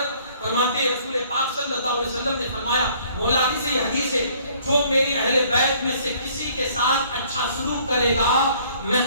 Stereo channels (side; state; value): both; inverted; correlation -0.59